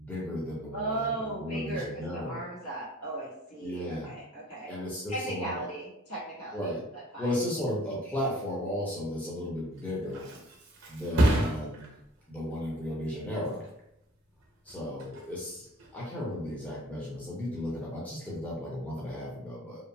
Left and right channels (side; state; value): both; normal; correlation 0.52